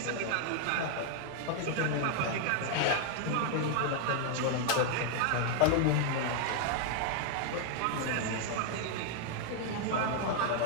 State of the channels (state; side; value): different; both; correlation 0.00